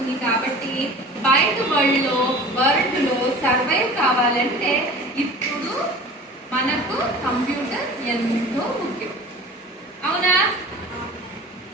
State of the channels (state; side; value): normal; both; correlation 0.41